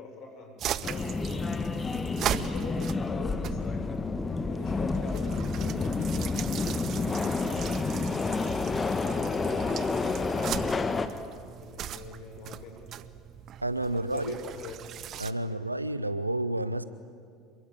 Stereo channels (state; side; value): normal; both; correlation 0.53